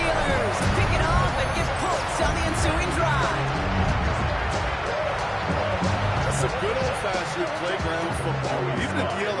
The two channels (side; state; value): both; identical; correlation 1.00